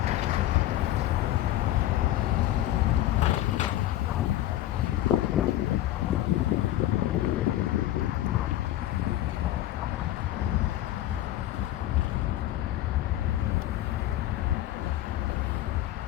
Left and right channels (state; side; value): quieter; right; 14.0 dB